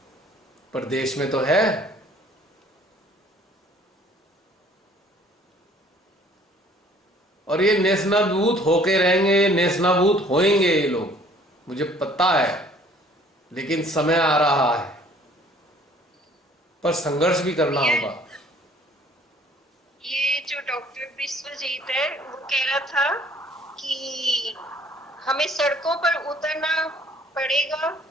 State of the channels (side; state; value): both; normal; correlation 0.56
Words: पर देश में तो है। और ये नेस्तनाबूत होके रहेंगे, नेस्तनाबूत होएंगे ये लोग, मुझे पता है। लेकिन समय आ रहा है, पर संघर्ष भी करना होगा। जो डॉक्टर विश्वजीत है वो कह रहा था कि हमें सड़कों पर उतरना पड़ेगा,